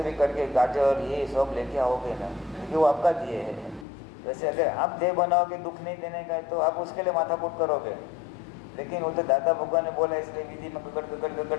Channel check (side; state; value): right; drops out; at 3.9 s